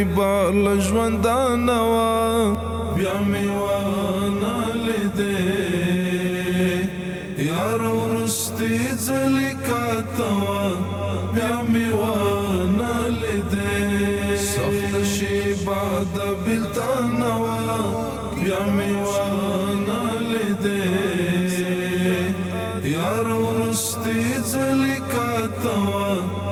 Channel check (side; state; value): both; identical; correlation 1.00